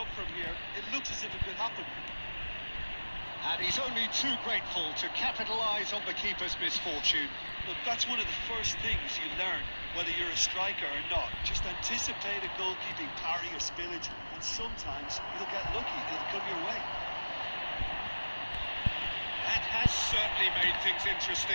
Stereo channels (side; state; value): both; inverted; correlation -1.00